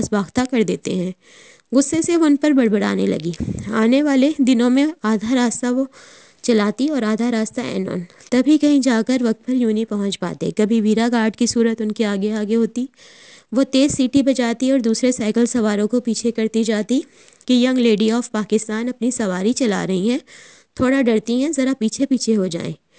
باختہ کر دیتے ہیں۔ غصے سے وہ ان پر بڑبڑانے لگی۔ آنے والے دنوں میں آدھا راستہ وہ چلاتی اور آدھا راستہ اینون، تبھی کہیں جا کر وقت پر یونی پہنچ پاتے۔ کبھی ویرا گارڈ کی صورت ان کے آگے آگے ہوتی، وہ تیز سیٹی بجاتی اور دوسرے سائیکل سواروں کو پیچھے کرتی جاتی کہ ینگ لیڈی آف پاکستان اپنی سواری چلا رہی ہیں، تھوڑا ڈرتی ہیں، ذرا پیچھے پیچھے ہو جائیں۔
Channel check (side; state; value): both; identical; correlation 1.00